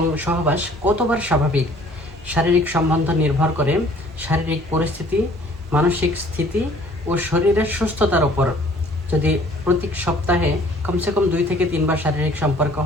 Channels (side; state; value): both; normal; correlation 0.55